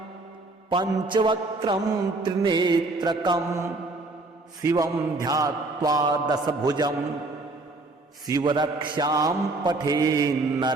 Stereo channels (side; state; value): left; quieter; 3.2 dB